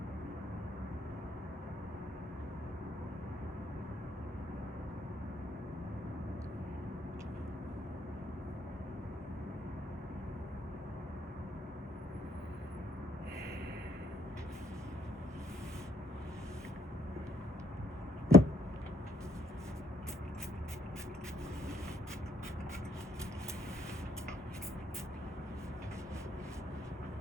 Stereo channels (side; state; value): both; normal; correlation 0.67